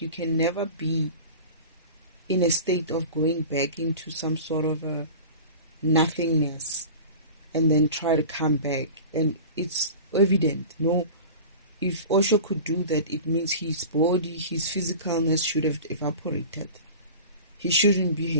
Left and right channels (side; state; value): both; inverted; correlation -0.37